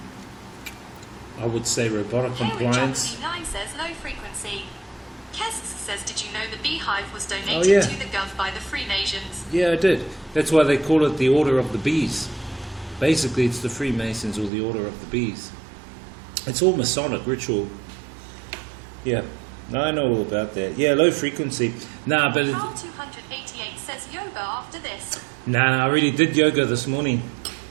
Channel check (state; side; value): drops out; left; at 14.5 s